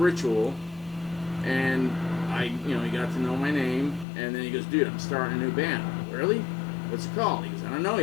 ritual, and he got to know my name, and then he goes, dude, I'm starting a new band. Really? What's it called? He goes, I don't know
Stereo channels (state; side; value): drops out; right; at 4.0 s